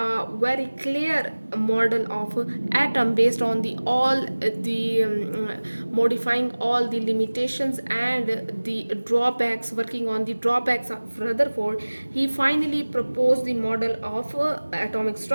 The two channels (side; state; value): both; inverted; correlation -1.00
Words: very clear model of atom based on the all the modifying all the limitations and the drawbacks, working on the drawbacks of Rutherford. He finally proposed the model of atomic